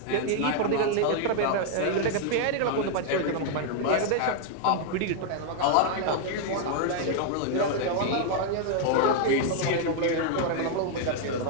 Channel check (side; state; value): both; different; correlation 0.00